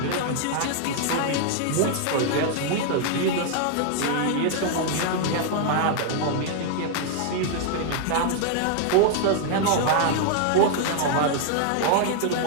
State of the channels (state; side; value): different; both; correlation 0.00